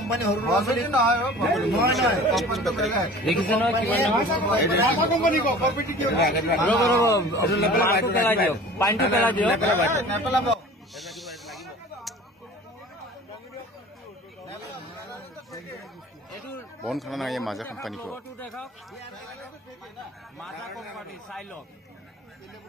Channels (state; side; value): normal; both; correlation 0.43